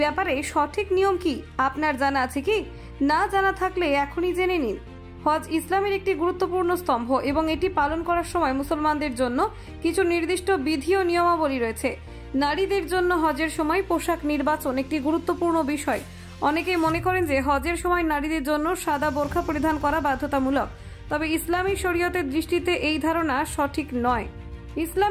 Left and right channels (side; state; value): both; identical; correlation 1.00